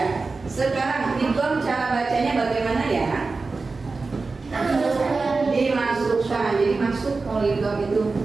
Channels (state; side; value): quieter; left; 4.0 dB